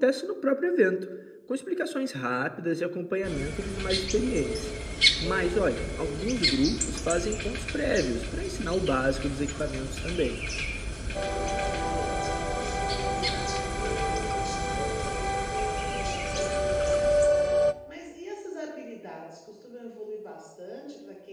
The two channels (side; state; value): both; identical; correlation 1.00